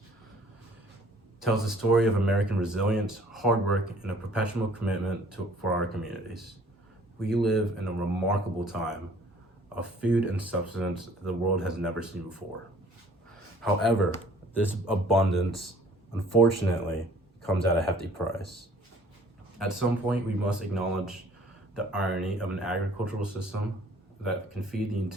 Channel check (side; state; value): both; normal; correlation 0.55